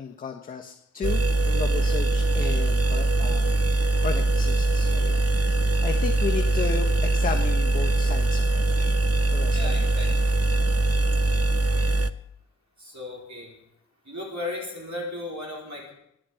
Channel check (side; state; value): both; normal; correlation 0.84